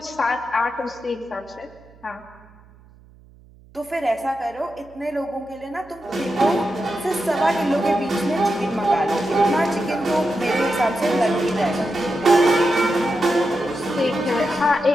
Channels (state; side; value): noise; right; hum, 26 dB below the sound